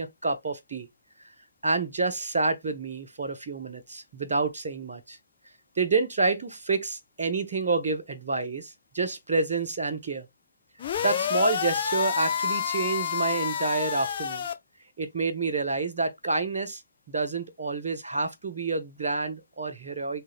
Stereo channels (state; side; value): inverted; both; correlation -0.63